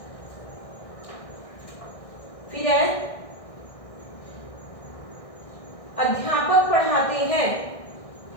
फिर है अध्यापक पढ़ाते हैं।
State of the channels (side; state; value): right; late; 1.6 ms